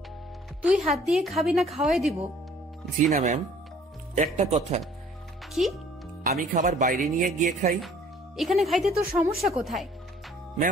তুই হাত দিয়ে খাবি না খাওয়াই দিব? জি না ম্যাম। একটা কথা, কি? আমি খাবার বাইরে নিয়ে গিয়ে খাই। এখানে খাইতে তোর সমস্যা কোথায়?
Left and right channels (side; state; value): both; normal; correlation 0.55